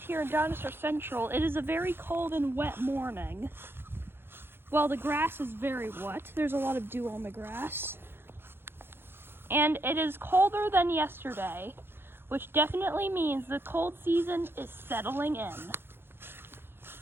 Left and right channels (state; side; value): late; left; 0.11 ms